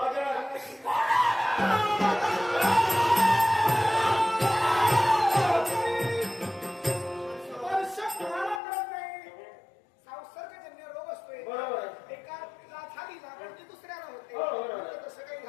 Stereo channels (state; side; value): drops out; right; at 8.6 s